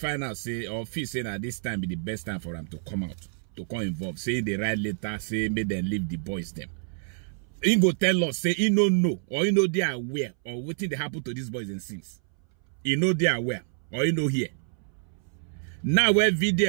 say, or feel saying that this time be the best time for them to come out, to come involved. Say they write letter, say make them leave the boys them. He go tell us, say he no know, or he know they are aware, or what thing they happen to these boys and since. He know they are aware, or he know here. Now where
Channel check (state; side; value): silent; left; 60 dB below the other